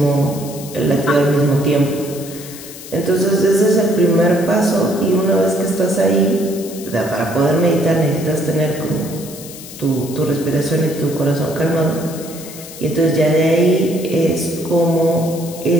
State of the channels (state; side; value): noise; left; hiss, 14 dB below the sound